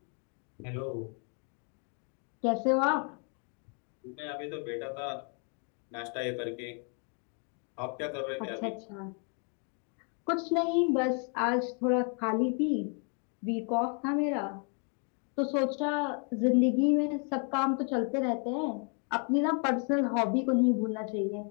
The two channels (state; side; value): quieter; right; 39.7 dB